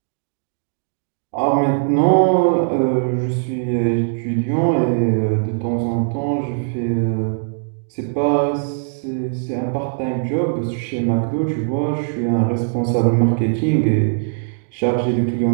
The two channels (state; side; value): silent; left; digital silence